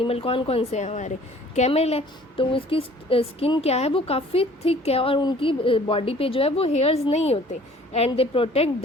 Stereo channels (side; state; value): both; normal; correlation 0.53